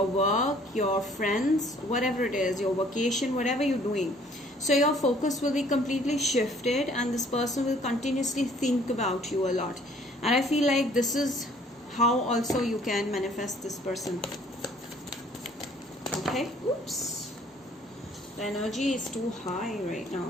work, your friends, whatever it is, your vacation, whatever you're doing. So your focus will be completely shifted, and this person will continuously think about you a lot. And I feel like this is how also you can manifest this person. Okay? Oops. The energy is too high right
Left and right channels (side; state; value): both; normal; correlation 0.58